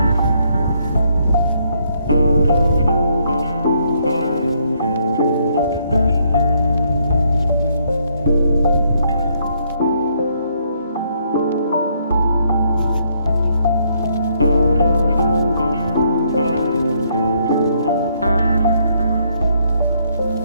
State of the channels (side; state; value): both; inverted; correlation -0.71